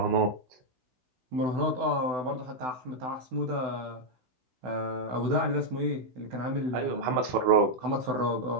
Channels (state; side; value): late; left; 16 ms